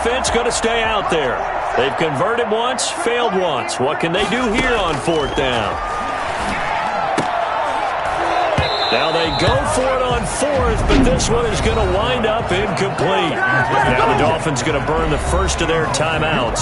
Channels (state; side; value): identical; both; correlation 1.00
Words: going to stay out there. They've converted once, failed once. What can they do here on fourth down? Now they go for it on fourth, but this one is going to wind up incomplete. Now the Dolphins going to burn the first of their